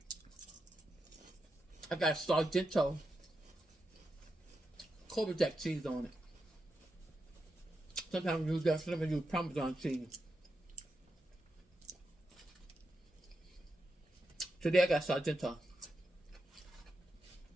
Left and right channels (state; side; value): normal; both; correlation 0.86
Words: I got Sargento Cobra Jack cheese on it. Sometimes I use that, sometimes I use Parmesan cheese. Today I got Sargento.